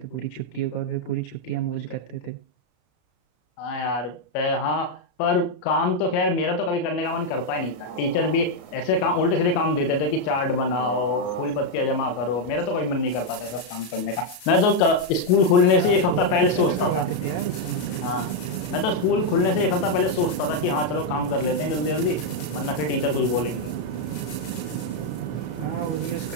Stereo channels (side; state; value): right; late; 33 ms